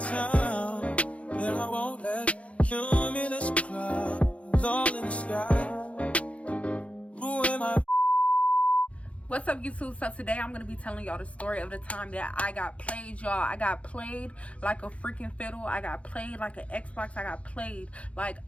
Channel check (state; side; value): late; right; 0.063 ms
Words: and I won't let cumulus clouds all in the sky ruin my. What's up, YouTube? So today I'm gonna be telling y'all the story of the time that I got played, y'all. I got played like a freaking fiddle. I got played like an Xbox. I got played like